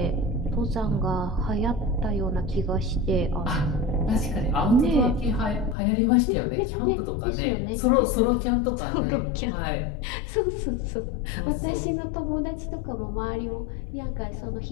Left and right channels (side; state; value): right; drops out; at 5.8 s